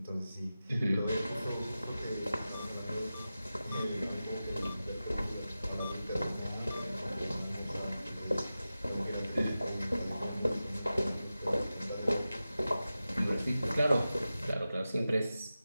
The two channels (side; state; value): both; inverted; correlation -0.94